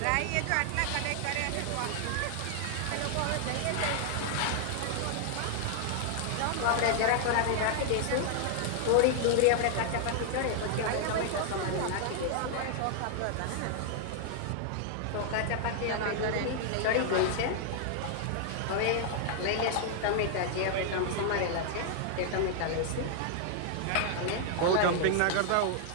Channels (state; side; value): different; both; correlation 0.00